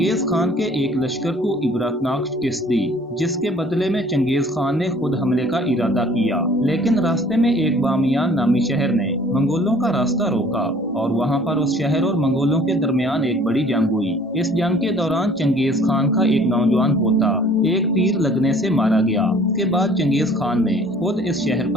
खान के एक लश्कर को इबरतनाक शिकस्त दी, जिसके बदले में चंगेज खान ने खुद हमले का इरादा किया, लेकिन रास्ते में एक बामियान नामी शहर ने मंगोलों का रास्ता रोका और वहां पर उस शहर और मंगोलों के दरमियान एक बड़ी जंग हुई। इस जंग के दौरान चंगेज खान का एक नौजवान पोता एक तीर लगने से मारा गया। इसके बाद चंगेज खान ने खुद इस शहर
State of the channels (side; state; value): both; normal; correlation 0.53